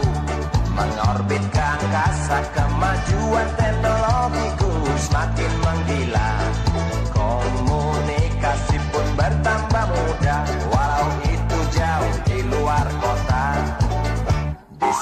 mengorbit ke angkasa, kemajuan teknologiku semakin menggila. Komunikasi pun bertambah mudah, walau itu jauh di luar kota. Di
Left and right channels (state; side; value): identical; both; correlation 1.00